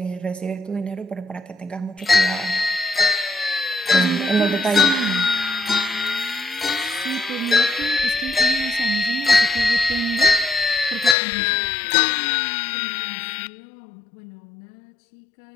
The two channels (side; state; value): right; drops out; at 11.2 s